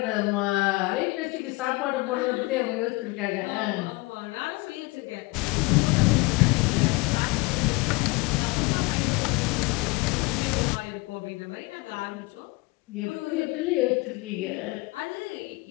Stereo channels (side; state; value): right; quieter; 24.0 dB